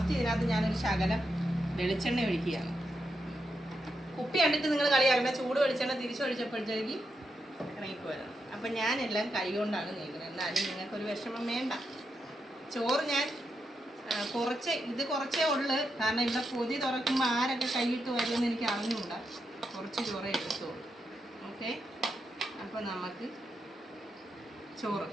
ഇതിനകത്ത് ഞാനൊരു ശകലം വെളിച്ചെണ്ണ ഒഴിക്കുകയാണ്. കുപ്പി കണ്ടിട്ട് നിങ്ങൾ കളിയാക്കണ്ട. ചൂട് വെളിച്ചെണ്ണ തിരിച്ചൊഴിച്ചപ്പോഴത്തേക്ക് ഇറങ്ങിപ്പോയതാണ്. അപ്പം ഞാനെല്ലാം കൈ കൊണ്ടാണ് നീക്കുന്നത്. എന്നാലും നിങ്ങൾക്കൊരു വിഷമം വേണ്ട. ചോറ് ഞാൻ കുറച്ചേ ഉള്ളു. കാരണം ഇവിടെ പൊതി തുറക്കുമ്പോൾ ആരൊക്കെ കൈയിട്ട് വരുമെന്ന് എനിക്ക് അറിഞ്ഞുകൂടാ. കുറച്ച് ചോറേ എടുത്തോളൂ. ഓക്കെ, അപ്പോൾ നമുക്ക് ചോറ്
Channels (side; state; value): both; normal; correlation 0.84